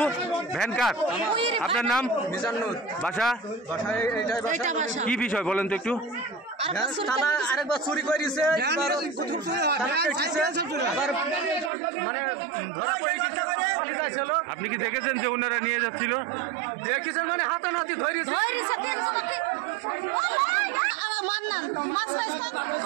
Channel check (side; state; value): left; drops out; at 11.7 s